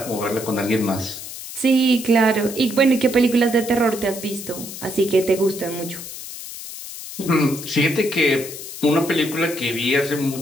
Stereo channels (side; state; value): left; noise; hiss, 11 dB below the sound